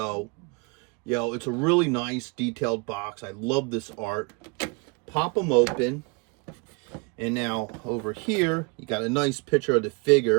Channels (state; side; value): quieter; left; 31.2 dB